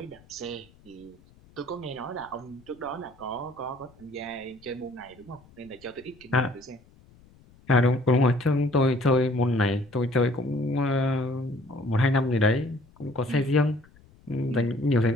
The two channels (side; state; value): left; noise; rumble, 27 dB below the sound